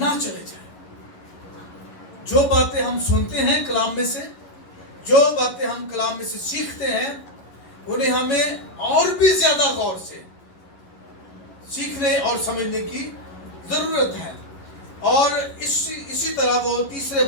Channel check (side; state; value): right; late; 11 ms